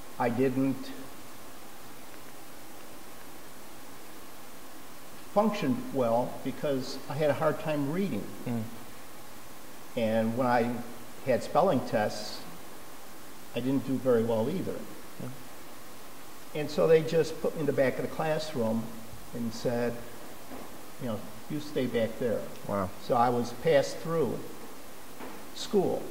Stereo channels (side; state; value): both; identical; correlation 1.00